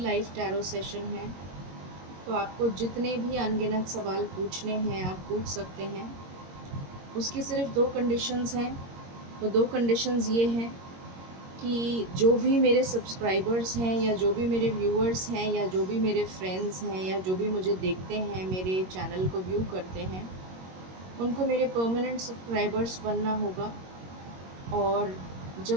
टैरो सेशन है, तो आपको जितने भी अनगिनत सवाल पूछने हैं आप पूछ सकते हैं। उसकी सिर्फ 2 कंडीशंस हैं। वो 2 कंडीशंस ये हैं कि जो भी मेरे सब्सक्राइबर्स हैं या जो भी मेरे व्यूअर्स हैं या जो भी मेरे फ्रेंड्स हैं या जो भी मुझे देखते हैं, मेरे चैनल को व्यू करते हैं, उनको मेरे परमानेंट सब्सक्राइबर्स बनना होगा। और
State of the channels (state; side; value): late; left; 22 ms